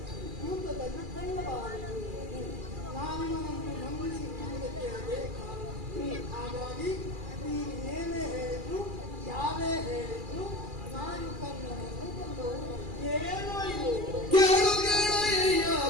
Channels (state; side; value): late; left; 2.4 ms